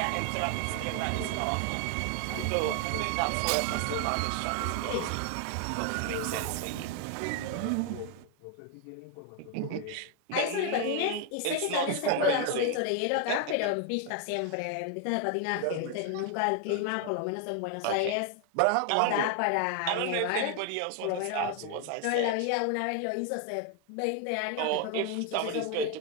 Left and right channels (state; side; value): different; both; correlation 0.01